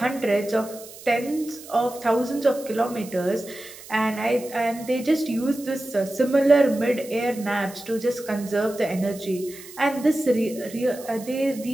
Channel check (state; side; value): noise; right; hiss, 17 dB below the sound